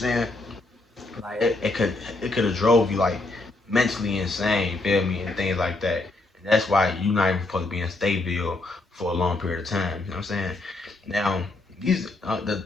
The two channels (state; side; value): quieter; right; 3.0 dB